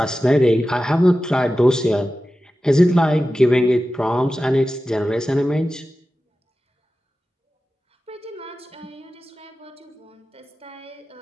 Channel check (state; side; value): normal; both; correlation 0.94